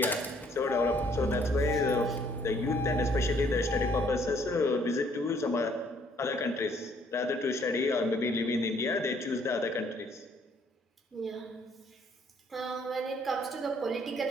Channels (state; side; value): normal; both; correlation 0.64